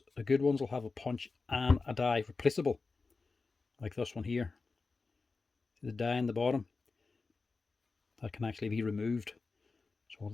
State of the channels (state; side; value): quieter; right; 4.1 dB